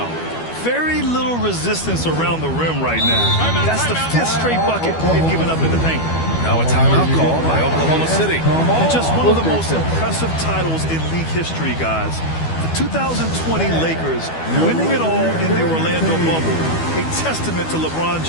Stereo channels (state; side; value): late; right; 12 ms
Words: very little resistance around the rim right now. That's the 5th straight bucket they've given up in the paint. Now a timeout call by Oklahoma City. And just one of the most impressive titles in league history, guys. The 2020 Lakers winning it all in the Orlando bubble. A testament to LeBron